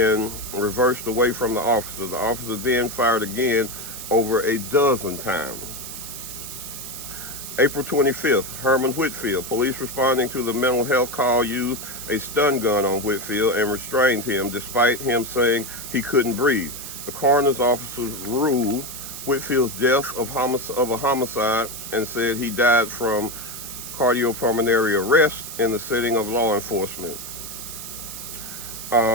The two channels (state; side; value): noise; right; hiss, 10 dB below the sound